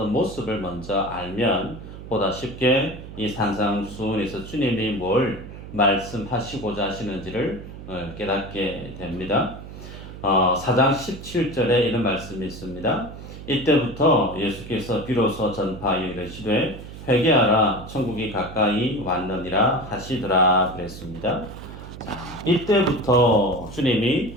모습을 먼저 알면 보다 쉽게 이 산상수훈에서 주님이 뭘 말씀하시고자 하시는지를 깨닫게 됩니다. 4장 17절에 이런 말씀이 있습니다. 이때부터 예수께서 비로소 전파하여 이르시되 회개하라 천국이 가까이 왔느니라 하시더라 그랬습니다. 이때부터 주님이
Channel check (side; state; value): right; noise; hum, 13 dB below the sound